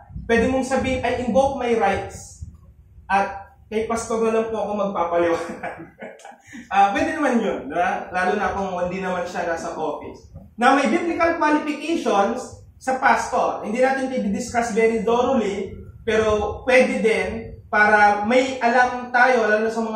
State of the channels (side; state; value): both; identical; correlation 1.00